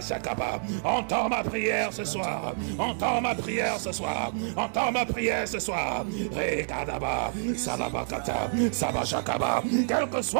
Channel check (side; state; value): left; silent; digital silence